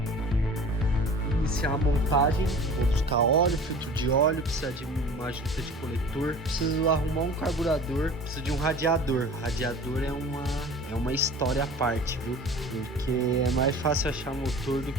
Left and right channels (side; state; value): both; normal; correlation 0.42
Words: Iniciar a montagem, vou buscar óleo, filtro de óleo, precisa de uma junta de coletor, preciso arrumar um carburador, preciso de um radiador. Radiador é uma história à parte, viu? Porque é mais fácil achar motor do